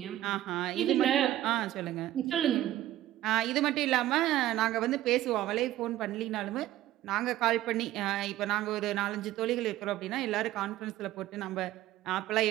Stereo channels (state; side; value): quieter; left; 14.2 dB